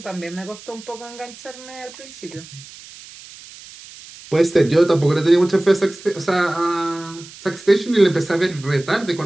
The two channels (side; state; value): right; noise; hiss, 18 dB below the sound